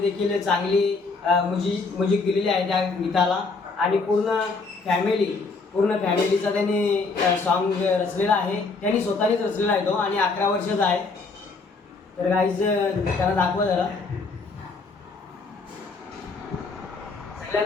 चांगली म्युझिक दिलेली आहे त्या गीताला. आणि पूर्ण फॅमिलीचा त्यांनी सॉन्ग रचलेला आहे. त्यांनी स्वतःनेच रचलेला आहे तो आणि 11 वर्षाचा आहे. तर गाईज त्याला दाखवा जरा.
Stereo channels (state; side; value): quieter; right; 4.1 dB